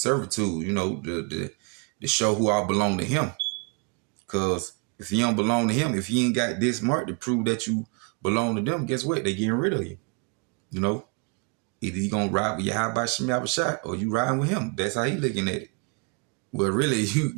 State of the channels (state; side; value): quieter; left; 33.1 dB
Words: You know, to show who all belong to Him. Because if you don't belong to Him, if you ain't got this mark to prove that you belong to them, guess what? They getting rid of you. You know, either you gonna ride with Yahweh Shem Yahushua or you riding with Him. That's how He looking at it. Well, really,